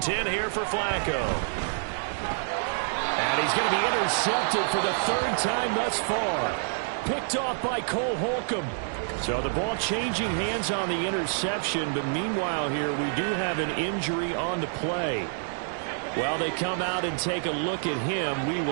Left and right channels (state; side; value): silent; left; digital silence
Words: here for Flacco. And he's going to be intercepted for the 3rd time thus far. Picked off by Cole Holcomb. So the ball changing hands on the interception, but meanwhile here we do have an injury on the play. While they come out and take a look at him, we